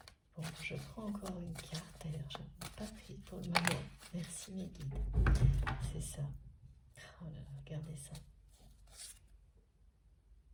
Bon, je prends encore une carte. D'ailleurs, je n'ai pas pris pour le moment. Merci mes guides. C'est ça. Oh là là, regardez ça.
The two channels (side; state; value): both; identical; correlation 1.00